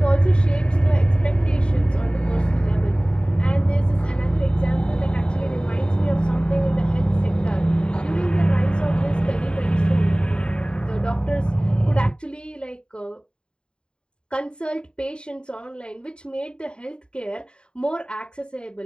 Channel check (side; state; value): right; late; 0.051 ms